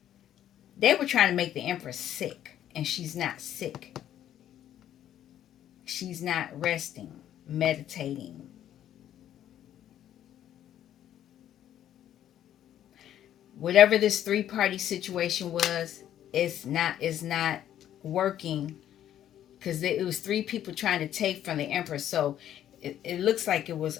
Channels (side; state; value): right; quieter; 11.2 dB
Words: they were trying to make the empress sick, and she's not sick. She's not resting, meditating. Whatever this three-party situation was, is not working because it was three people trying to take from the empress. So it looks like it was